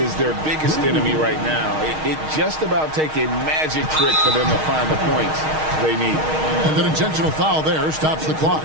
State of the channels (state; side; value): late; left; 6.4 ms